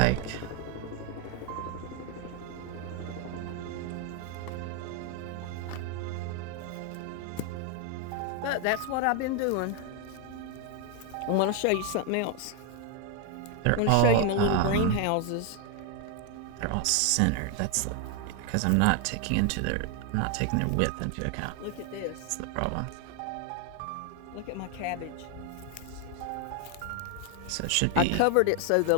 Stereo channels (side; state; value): both; different; correlation 0.01